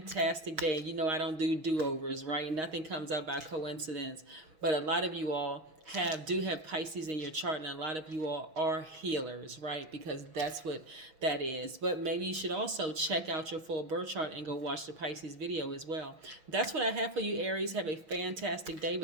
day. You know I don't do do-overs, right? Nothing comes up by coincidence. But a lot of you all do have Pisces in your chart, and a lot of you all are healers, right? Because that's what that is. But maybe you should also check out your full birth chart and go watch the Pisces video as well. That's what I have for you, Aries. Have a fantastic day.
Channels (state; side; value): late; left; 6.4 ms